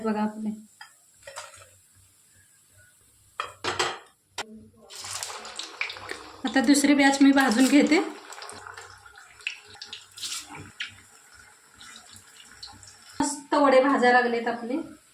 बघा आपले। आता दुसरी बॅच मी भाजून घेते। भाजायला लागलेत आपले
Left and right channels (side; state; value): both; identical; correlation 1.00